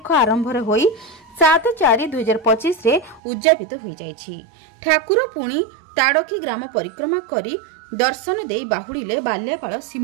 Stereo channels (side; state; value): left; drops out; at 3.2 s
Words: आरंभ होई 7/4/2025 रे उद्यापित हो जाइछि। ठाकुर पुणी ताड़की ग्राम परिक्रमा करी दर्शन दे बाहुड़िले बाल्यापाड़